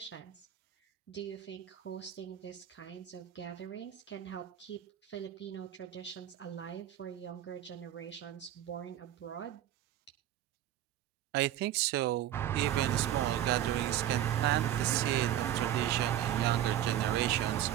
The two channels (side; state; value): left; quieter; 11.9 dB